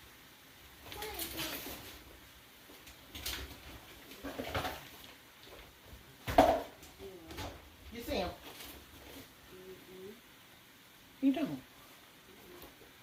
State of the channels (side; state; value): both; identical; correlation 1.00